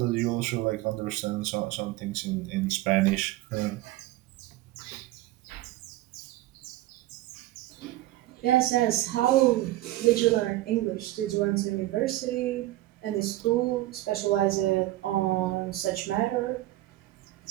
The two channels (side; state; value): left; quieter; 16.4 dB